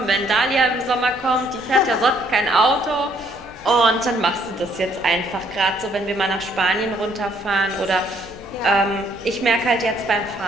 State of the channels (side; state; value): left; noise; rumble, 24 dB below the sound